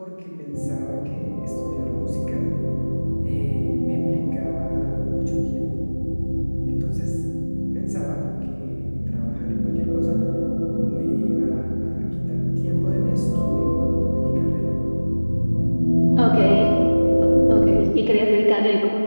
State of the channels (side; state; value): both; inverted; correlation -1.00